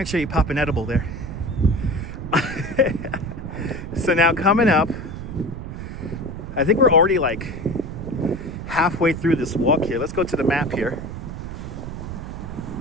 you pop an edible there. So now coming up, I think we're already like halfway through this walk here. Let's go to the map here.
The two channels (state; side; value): noise; right; rumble, 8 dB below the sound